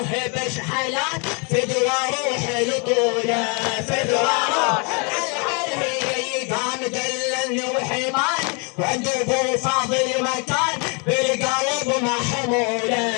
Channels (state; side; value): quieter; right; 34.2 dB